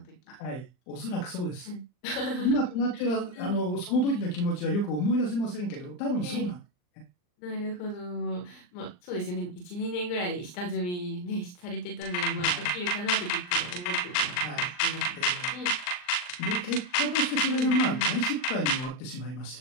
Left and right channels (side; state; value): right; late; 39 ms